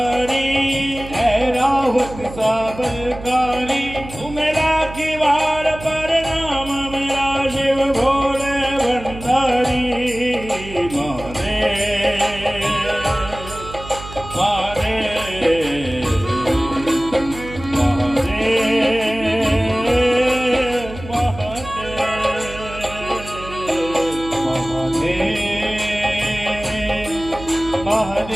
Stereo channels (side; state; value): right; noise; hum, 13 dB below the sound